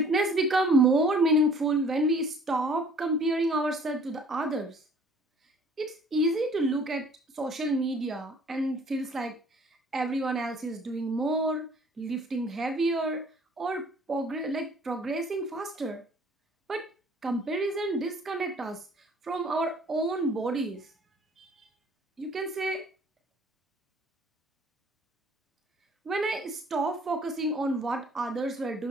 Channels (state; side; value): normal; both; correlation 0.54